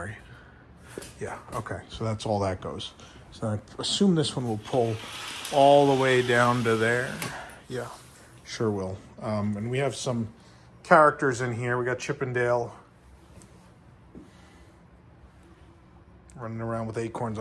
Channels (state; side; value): identical; both; correlation 1.00